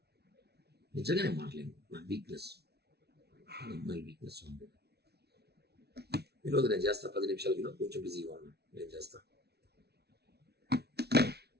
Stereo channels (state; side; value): late; left; 0.48 ms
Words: నిజంగా నేను మారలేను. నా వీక్నెస్ అమ్మాయి వీక్నెస్ ఉంది. ఈరోజు నేను చేస్తా 10 నిమిషాలకి కొంచెం బిజీగా ఉన్నా. నేను చేస్తా.